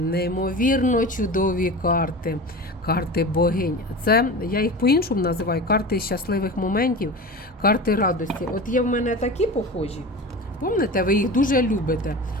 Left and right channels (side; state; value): both; normal; correlation 0.31